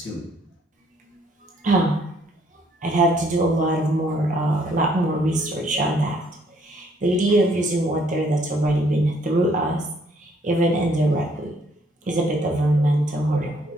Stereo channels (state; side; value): normal; both; correlation 0.66